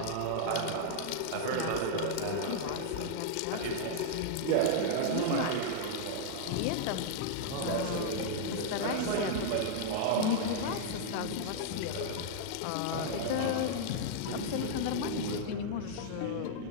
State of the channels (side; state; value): both; different; correlation -0.01